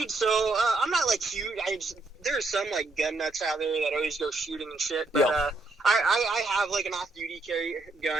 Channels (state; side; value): quieter; left; 3.2 dB